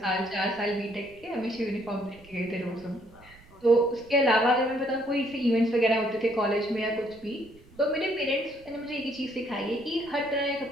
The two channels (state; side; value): noise; right; rumble, 25 dB below the sound